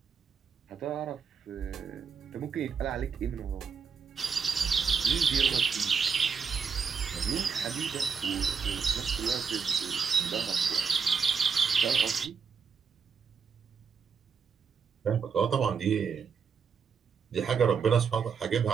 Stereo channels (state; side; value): quieter; left; 6.1 dB